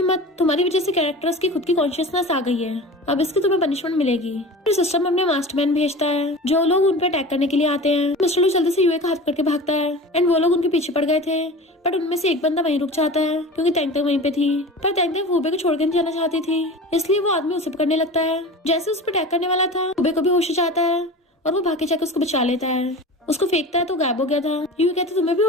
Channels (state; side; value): normal; both; correlation 0.35